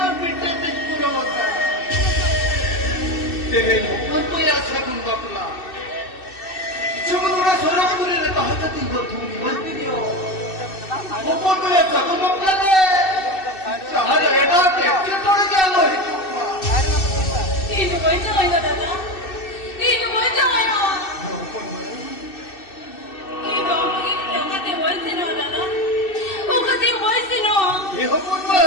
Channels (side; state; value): right; late; 2.6 ms